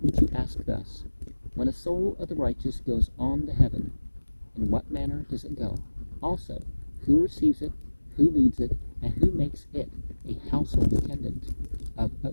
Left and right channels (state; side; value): inverted; both; correlation -1.00